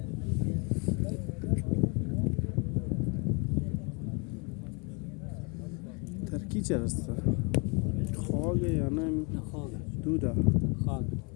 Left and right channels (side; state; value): right; quieter; 33.0 dB